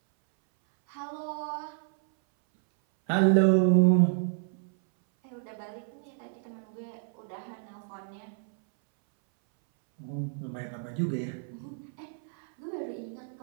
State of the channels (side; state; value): left; silent; 58 dB below the other